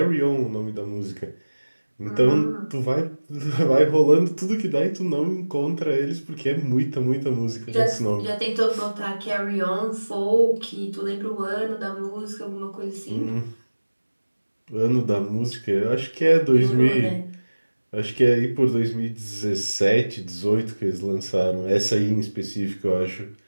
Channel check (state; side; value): inverted; both; correlation -1.00